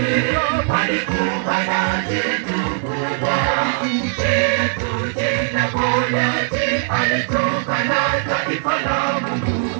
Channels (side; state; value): left; silent; 57 dB below the other